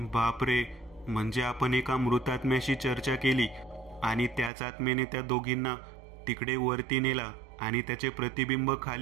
बापरे, म्हणजे आपण एका मृतात्म्याशी चर्चा केली आणि त्याच आत्म्याने त्या दोघींना तिकडे वरती नेला आणि त्याचे प्रतिबिंब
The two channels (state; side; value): drops out; left; at 4.5 s